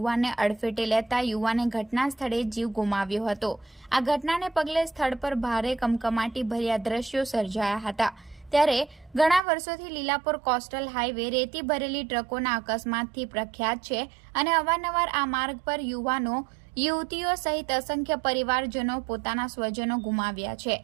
અડફેટે લેતા યુવાને ઘટના સ્થળે જીવ ગુમાવ્યો હતો। આ ઘટનાને પગલે સ્થળ પર ભારે કમકમાટી ભર્યા દ્રશ્યો સર્જાયા હતા। ત્યારે ઘણા વર્ષોથી લીલાપોર કોસ્ટલ હાઈવે રેતી ભરેલી ટ્રકોના અકસ્માતથી પ્રખ્યાત છે અને અવારનવાર આ માર્ગ પર યુવાનો યુવતીઓ સહિત અસંખ્ય પરિવારજનો પોતાના સ્વજનો ગુમાવ્યા છે।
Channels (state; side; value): drops out; left; at 9.4 s